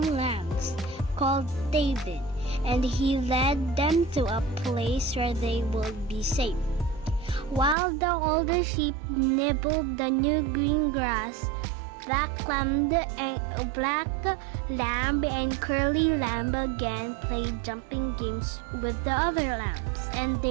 lambs," called David, and he led them to a place where they would be safe. While the older sheep nibbled the new green grass, black lamb and curly lamb again played jumping games with the other lambs, and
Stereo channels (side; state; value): left; drops out; at 7.8 s